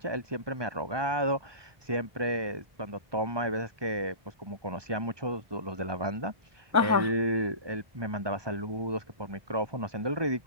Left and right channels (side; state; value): left; late; 1.2 ms